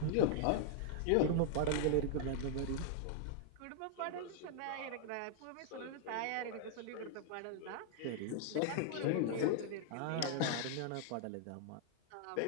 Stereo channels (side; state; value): both; different; correlation -0.01